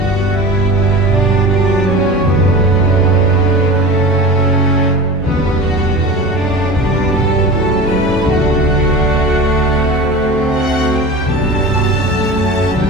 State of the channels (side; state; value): both; normal; correlation 0.34